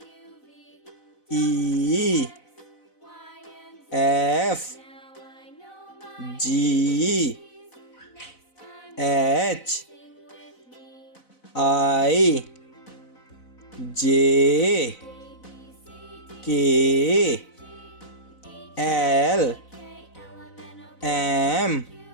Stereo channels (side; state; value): right; late; 4.0 ms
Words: E F G H I J K L M